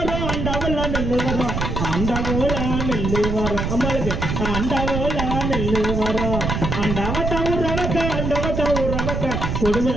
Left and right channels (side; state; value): right; noise; rumble, 2 dB below the sound